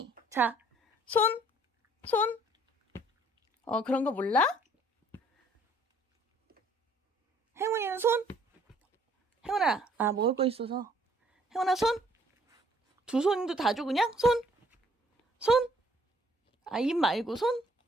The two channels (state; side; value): normal; both; correlation 0.61